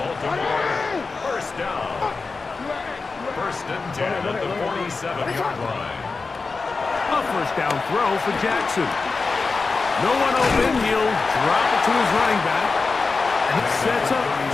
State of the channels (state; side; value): quieter; right; 4.2 dB